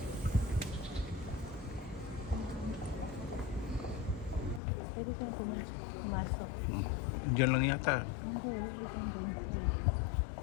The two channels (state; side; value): drops out; right; at 4.6 s